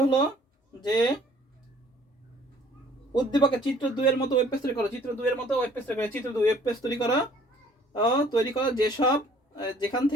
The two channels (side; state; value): both; normal; correlation 0.56